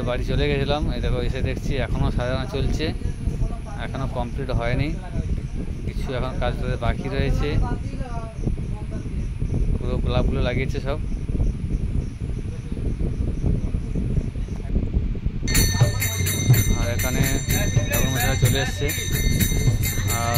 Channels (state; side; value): identical; both; correlation 1.00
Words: বাড়ি চলে গেছিলাম। এই দেখো এসে দেখছি এখনো সাজানো চলছে, এখনো কমপ্লিট হয়নি, কিছু এখন কাজ বাকি রয়েছে। পুরো গোলাপগুলো লাগিয়েছে সব। আর এখানে ঠাকুরমশাই চলে এসছে,